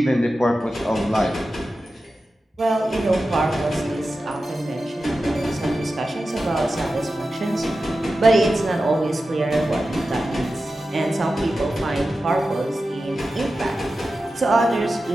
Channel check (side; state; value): both; normal; correlation 0.93